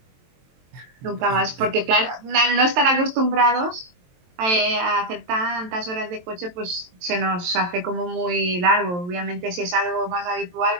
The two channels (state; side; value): late; left; 23 ms